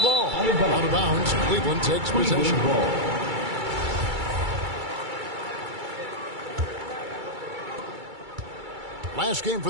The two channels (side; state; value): left; late; 2.3 ms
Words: ball. Out of bounds. Cleveland takes possession. Last game for